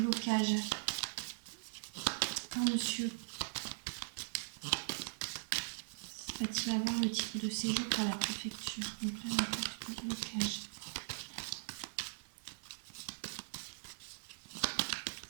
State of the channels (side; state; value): left; silent; digital silence